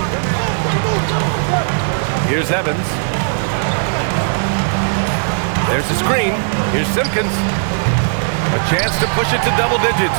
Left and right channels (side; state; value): left; silent; digital silence